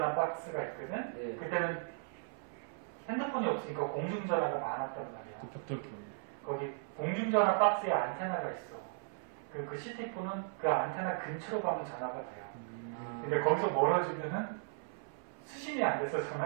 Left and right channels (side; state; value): left; silent; 53 dB below the other